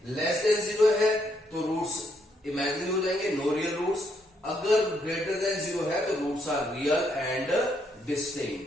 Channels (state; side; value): normal; both; correlation 0.75